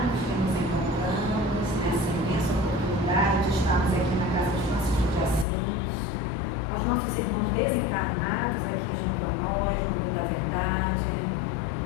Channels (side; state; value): right; drops out; at 5.5 s